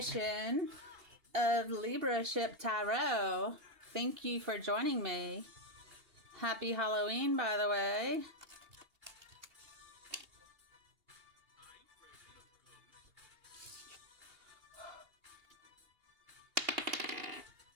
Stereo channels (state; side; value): late; left; 2.8 ms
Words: of Libra Ship Tarot. Thank you for joining me. Happy Halloween, by the way.